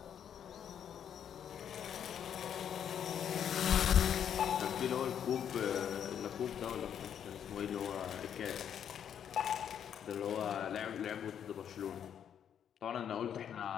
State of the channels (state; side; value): quieter; right; 8.9 dB